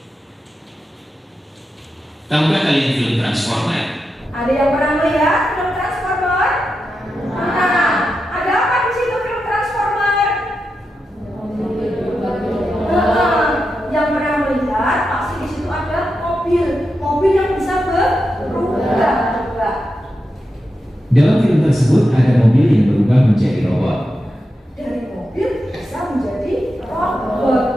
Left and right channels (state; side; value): normal; both; correlation 0.88